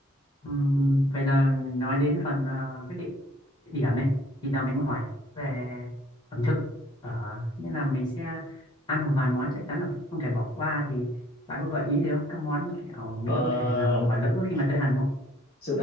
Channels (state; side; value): normal; both; correlation 0.59